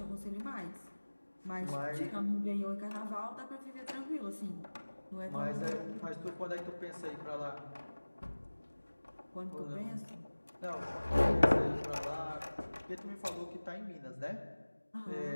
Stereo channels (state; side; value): inverted; both; correlation -1.00